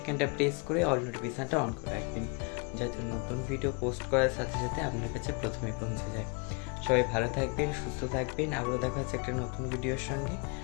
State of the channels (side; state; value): right; quieter; 33.0 dB